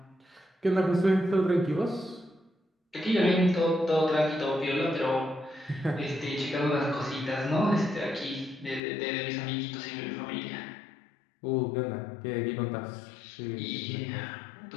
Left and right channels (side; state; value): right; drops out; at 8.8 s